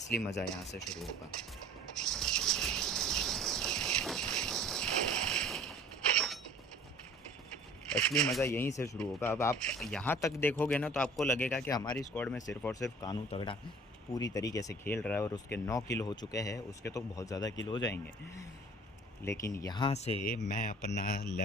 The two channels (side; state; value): both; normal; correlation 0.48